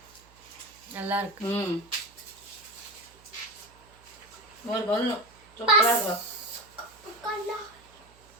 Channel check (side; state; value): right; noise; hum, 26 dB below the sound